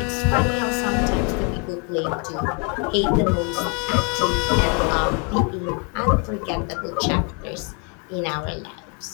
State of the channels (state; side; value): quieter; right; 35.9 dB